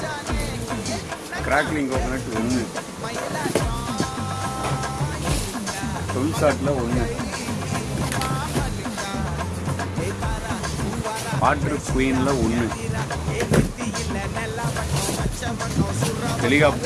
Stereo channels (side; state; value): both; identical; correlation 1.00